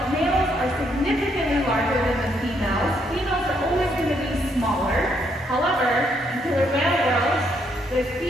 males are significantly larger than the females. Females are always going to be smaller. However, in killer whale world, the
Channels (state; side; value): normal; both; correlation 0.73